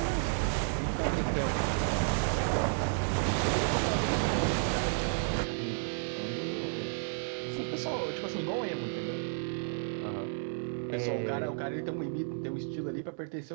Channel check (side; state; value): left; silent; digital silence